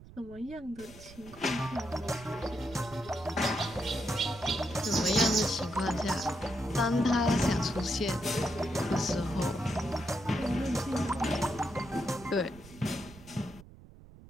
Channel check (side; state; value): right; noise; rumble, 19 dB below the sound